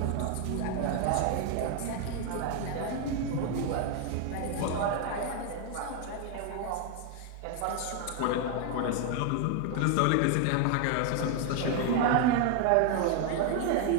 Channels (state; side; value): different; both; correlation 0.00